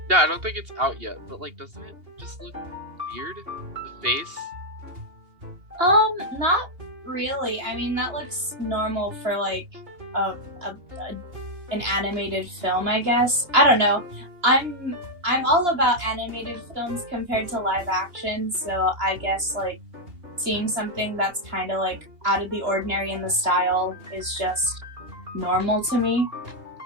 Yeah, I don't think it's out yet, but like, doesn't it just look weird? The face? Not really. I mean, that looks normal for like an animated film, I guess. I don't know. I'm all about animated films compared to live action, so I guess like seeing something that's kind of like out of the ordinary in the style is just normal to me.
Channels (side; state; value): left; late; 2.8 ms